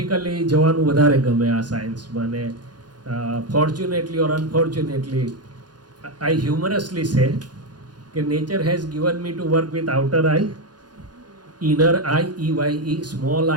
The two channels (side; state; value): left; late; 0.70 ms